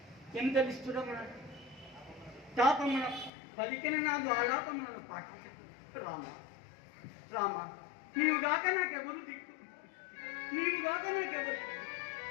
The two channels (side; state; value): right; drops out; at 3.3 s